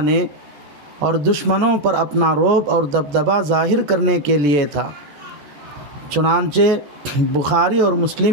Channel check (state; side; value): late; left; 14 ms